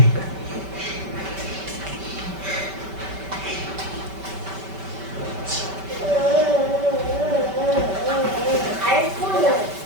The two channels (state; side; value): late; left; 5.2 ms